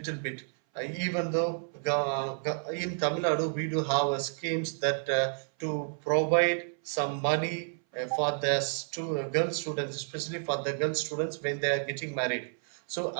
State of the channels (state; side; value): silent; left; 57 dB below the other